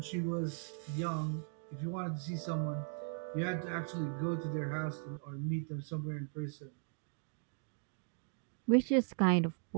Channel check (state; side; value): silent; left; 52 dB below the other